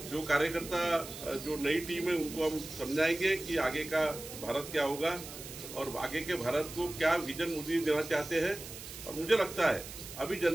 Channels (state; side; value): noise; right; hiss, 12 dB below the sound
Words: जो कार्यकर्ता जो नई टीम है उनको हम समझाएंगे कि आगे का भारत क्या होगा और आगे के भारत को क्या विजन मोदी देना चाहते हैं। और मुझे लगता है अभी